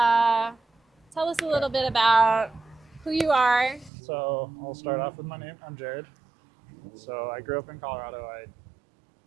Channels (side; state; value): left; drops out; at 3.9 s